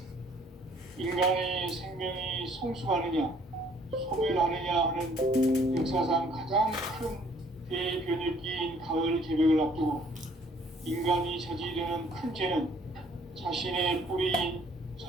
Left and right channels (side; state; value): both; normal; correlation 0.60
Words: 인간의 생명이 성숙하느냐, 소멸하느냐 하는 역사상 가장 큰 대변혁기인 가을 개벽을 앞두고 인간이 저지르는 큰 죄는 자신의 뿌리인